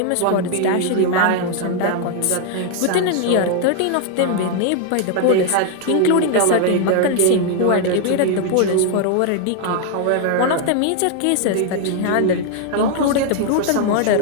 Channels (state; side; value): different; both; correlation 0.00